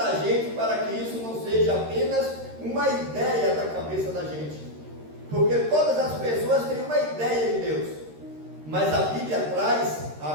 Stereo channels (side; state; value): left; late; 13 ms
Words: gente, para que isso não seja apenas uma ideia da cabeça da gente. Porque todas as pessoas têm uma ideia de Deus, mas a Bíblia traz